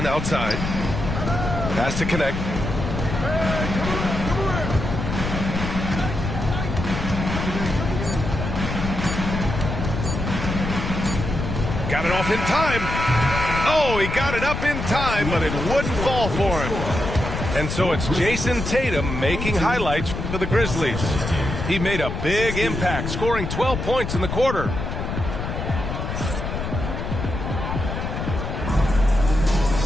outside. Pass to connect. Got it off in time. Oh, he got it up in time, but it wouldn't fall for him. And so it's Jason Tatum making highlights for the Grizzlies. He made a big impact, scoring 12 points in the quarter.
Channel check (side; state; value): left; noise; rumble, 4 dB below the sound